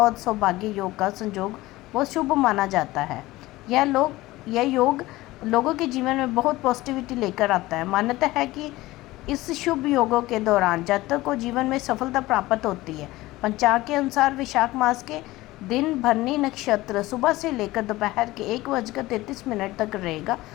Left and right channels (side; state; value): right; quieter; 18.4 dB